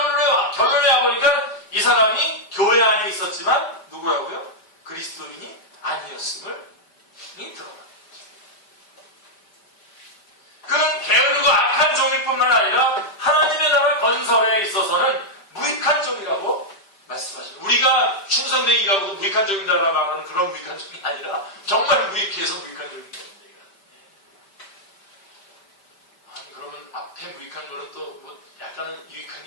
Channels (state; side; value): late; right; 5.1 ms